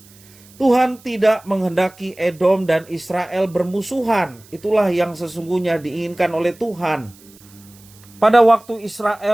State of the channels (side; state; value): right; noise; hiss, 25 dB below the sound